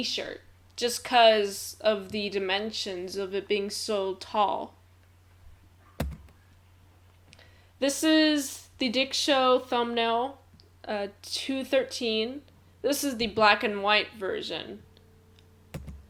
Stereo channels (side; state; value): both; identical; correlation 1.00